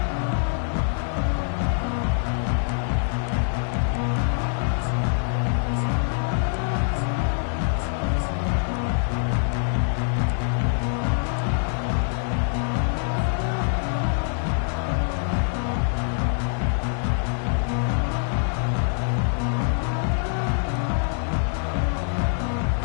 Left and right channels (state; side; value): silent; right; 62 dB below the other